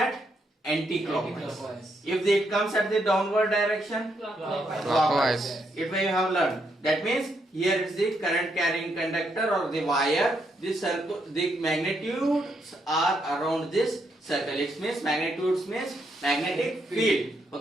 anti-clockwise. If it comes at the downward direction, clockwise. It we have learned. That means here is the current carrying conductor or the wire. The magnitudes are around this circle. It means magnitudes means magnetic field.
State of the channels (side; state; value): both; normal; correlation 0.77